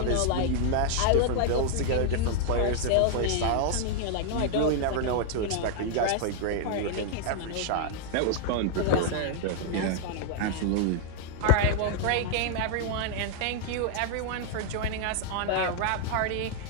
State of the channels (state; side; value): different; both; correlation 0.00